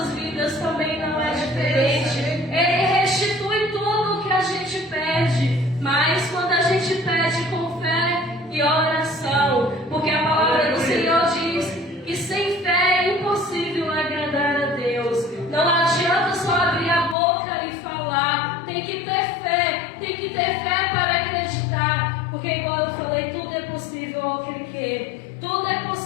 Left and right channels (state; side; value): drops out; right; at 17.2 s